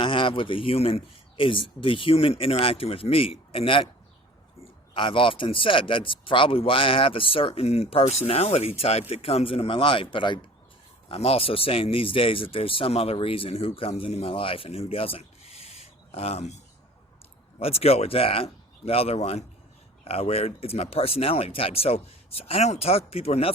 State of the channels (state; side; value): normal; both; correlation 0.45